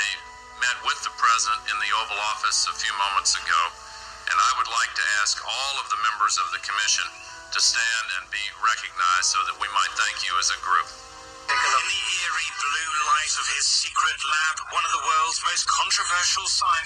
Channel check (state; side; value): identical; both; correlation 1.00